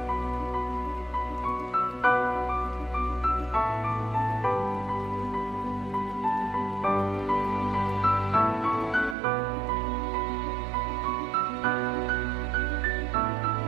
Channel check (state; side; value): drops out; left; at 9.2 s